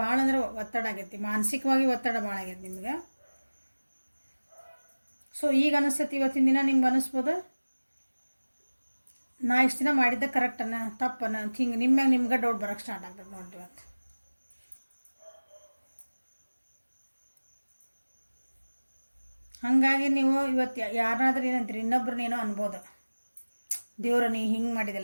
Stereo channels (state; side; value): inverted; both; correlation -1.00